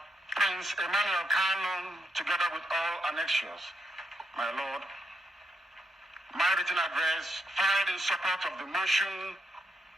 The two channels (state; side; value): normal; both; correlation 0.79